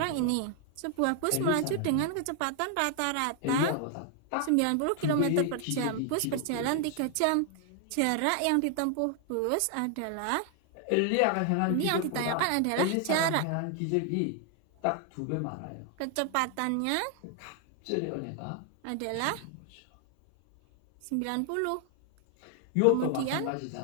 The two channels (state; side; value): different; both; correlation 0.00